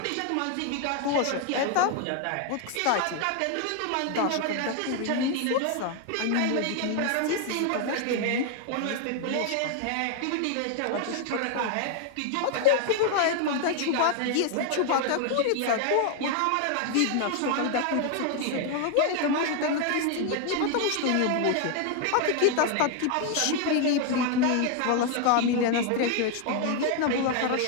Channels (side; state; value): both; different; correlation 0.01